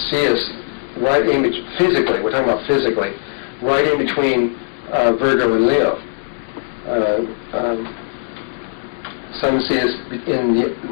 see us right in physically. We're talking about physically, right in between Virgo and Leo. Some see us in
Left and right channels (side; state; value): right; silent; 66 dB below the other